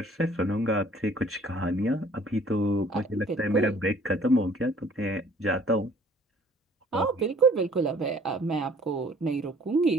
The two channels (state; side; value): normal; both; correlation 0.55